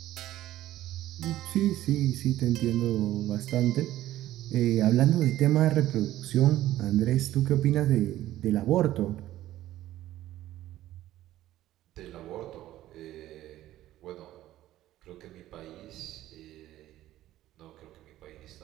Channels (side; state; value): left; quieter; 14.2 dB